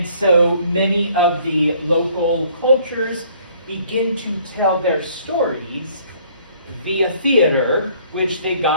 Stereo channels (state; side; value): inverted; both; correlation -0.59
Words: so many of the local cultures begin to tell their stories via theater, which they